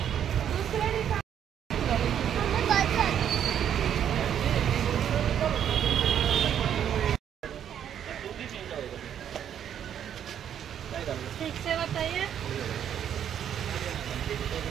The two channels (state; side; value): quieter; left; 9.4 dB